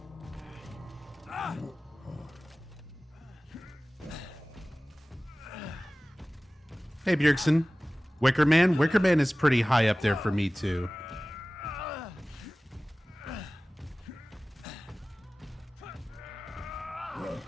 Hey, Bjergsen. Wicker Man? Wicker Man is pretty high up there for me, too.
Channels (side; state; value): both; normal; correlation 0.98